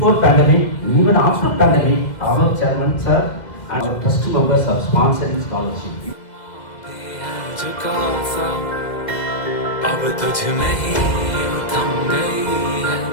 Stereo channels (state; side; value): late; right; 2.0 ms